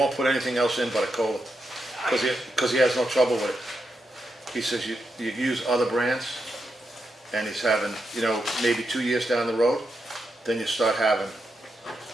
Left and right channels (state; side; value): normal; both; correlation 0.85